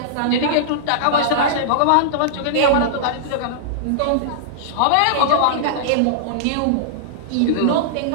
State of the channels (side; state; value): both; different; correlation -0.02